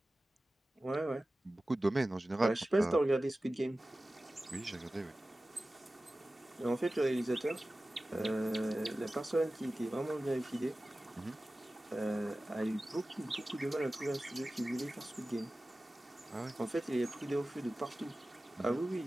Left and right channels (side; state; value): both; normal; correlation 0.96